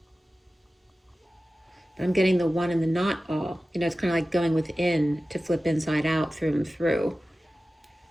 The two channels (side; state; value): both; normal; correlation 0.95